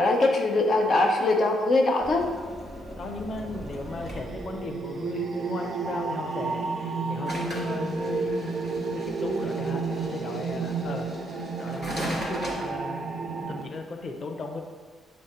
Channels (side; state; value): both; normal; correlation 0.74